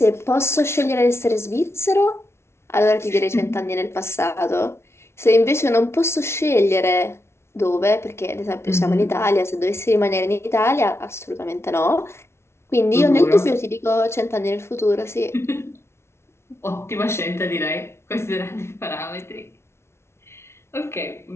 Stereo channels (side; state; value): right; late; 0.13 ms